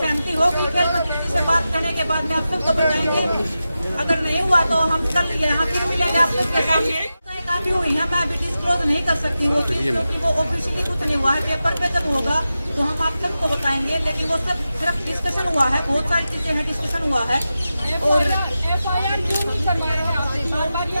होगी खेल मंत्री से बात करने के बाद में आप सबको बताएंगे। अगर नहीं हुआ तो हम कल यहाँ फिर मिलेंगे आप सबके सामने। काफी हुई है, मैं अभी डिस्क्लोज नहीं कर सकती वो चीज, क्योंकि वो ऑफिशियली कुछ नहीं हुआ है। पेपर पे जब होगा तो हम आप सबको बताएंगे, लेकिन वो सब सिर्फ डिस्कशन हुआ है, बहुत सारी चीजें हैं, डिस्कशन हुआ है। और FIR क्यों नहीं करवा रहे हैं आपसे? बार-बार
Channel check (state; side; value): inverted; both; correlation -0.92